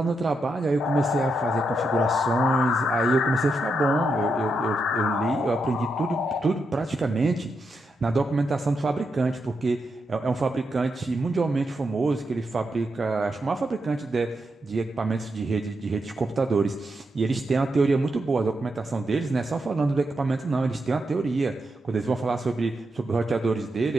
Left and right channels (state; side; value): normal; both; correlation 0.84